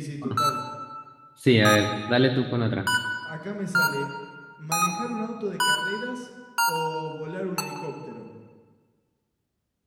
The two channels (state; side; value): identical; both; correlation 1.00